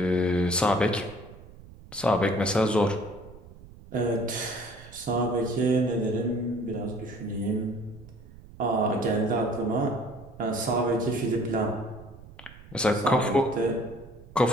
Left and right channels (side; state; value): right; noise; rumble, 19 dB below the sound